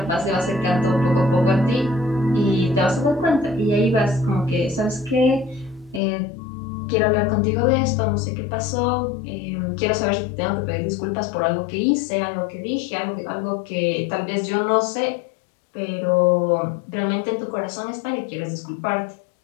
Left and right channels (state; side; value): drops out; right; at 6.0 s